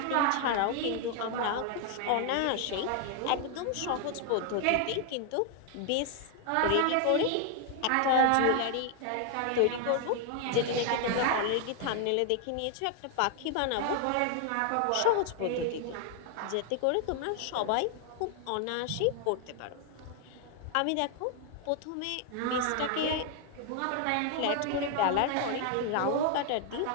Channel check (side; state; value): both; different; correlation 0.00